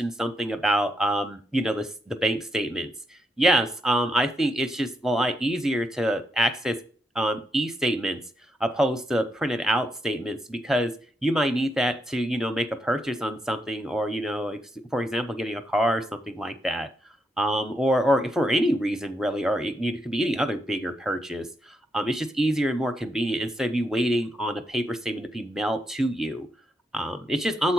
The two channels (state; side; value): normal; both; correlation 0.80